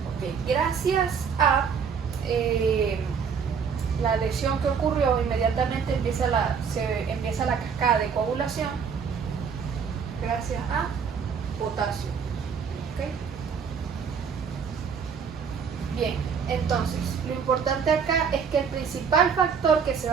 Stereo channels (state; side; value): quieter; left; 6.5 dB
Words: Ok, gracias a la lesión que ocurrió, inmediatamente empieza la cascada de coagulación gracias a potasio. ¿Okay? Bien, entonces, lo importante acá es que el principal factor que se